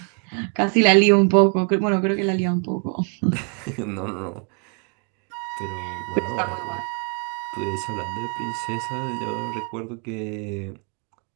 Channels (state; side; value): quieter; left; 39.0 dB